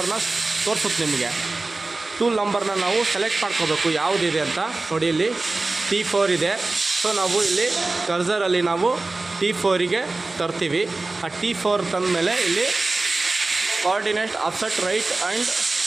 ತೋರಿಸುತ್ತೆ ನಿಮಗೆ. ಟೂಲ್ ನಂಬರ್ನ ನಾವು ಸೆಲೆಕ್ಟ್ ಮಾಡ್ಕೋಬೇಕು ಯಾವುದಿದೆ ಅಂತ. ನೋಡಿ, ಇಲ್ಲಿ T4 ಇದೆ. ಸೊ ನಾವು ಇಲ್ಲಿ ಕರ್ಸರಲ್ಲಿ ನಾವು T4ಗೆ ತರ್ತೀವಿ. ಆ T4 ತಂದಮೇಲೆ ಇಲ್ಲಿ coordinate offset right and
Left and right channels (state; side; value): quieter; left; 3.3 dB